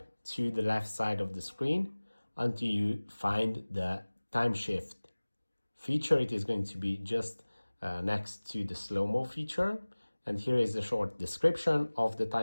to the left side of the screen until you find the time shift feature. It is going to be just next to the slow-mo feature, and here is a short description of the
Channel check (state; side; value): inverted; both; correlation -1.00